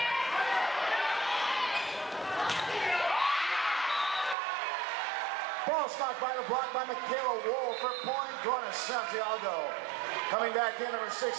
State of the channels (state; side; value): drops out; left; at 4.4 s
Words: Ball stopped by the block by Michaela Wool for point going to Santiago. Coming back in number